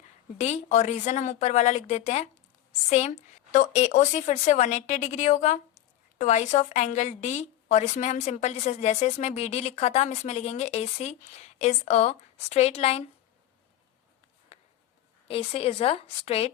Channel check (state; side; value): quieter; right; 12.9 dB